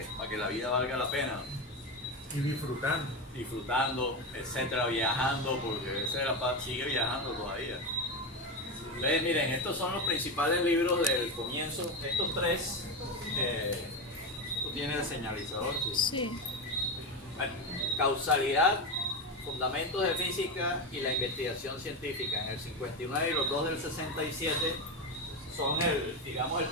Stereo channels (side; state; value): both; normal; correlation 0.16